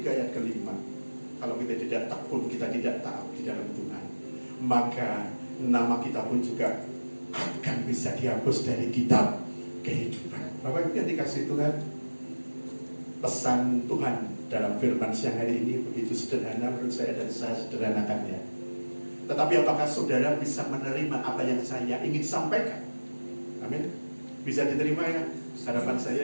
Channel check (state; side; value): inverted; both; correlation -1.00